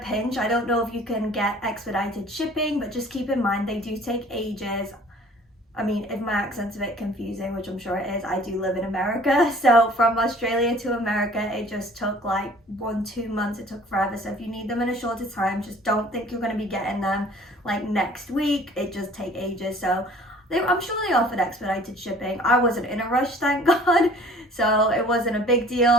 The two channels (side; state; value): both; normal; correlation 0.51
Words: I don't know if you can get expedited shipping, but just keep in mind they do take ages. I mean, if my accent's a bit confusing, which I'm sure it is, I do live in America. So from Australia to America, it just took like 1-2 months. It took forever. So if you need them in a shorter time, just don't think you're going to be getting them like next week. It just take ages. So I'm sure they offered expedited shipping. I wasn't in a rush, thank God. So it wasn't a big